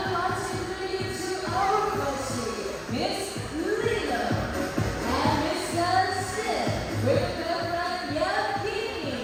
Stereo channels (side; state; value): both; identical; correlation 1.00